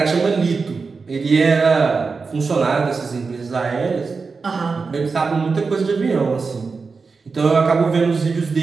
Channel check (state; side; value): quieter; left; 4.6 dB